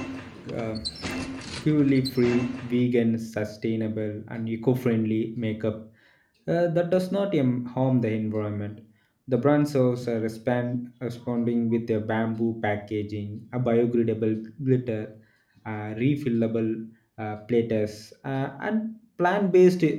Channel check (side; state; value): both; identical; correlation 1.00